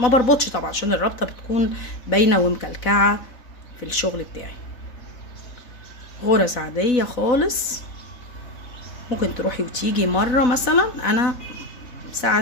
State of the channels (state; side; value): late; right; 4.1 ms